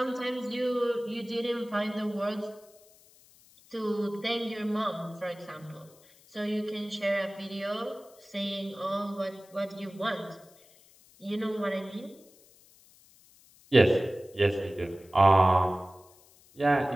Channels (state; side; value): noise; left; hiss, 27 dB below the sound